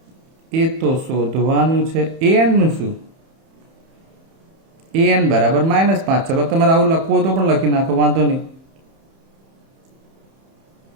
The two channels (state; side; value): late; left; 31 ms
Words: એ તો શોધવાનું છે. એન નું શું? એન બરાબર -5. ચલો તમારે આવું લખવું તો પણ લખી નાખો, વાંધો નહીં,